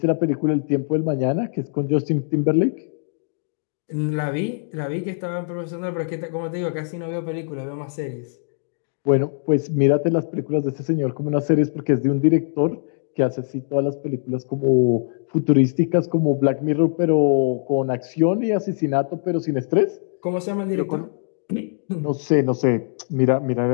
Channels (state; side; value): silent; right; digital silence